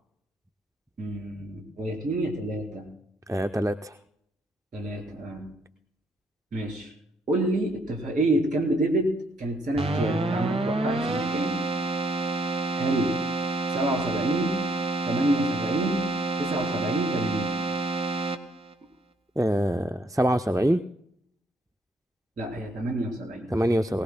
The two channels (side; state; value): both; normal; correlation 0.70